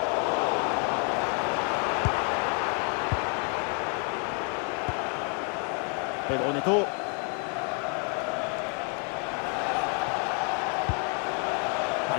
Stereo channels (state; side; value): quieter; right; 39.0 dB